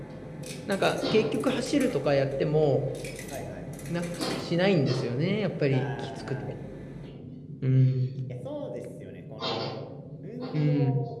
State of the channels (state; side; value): identical; both; correlation 1.00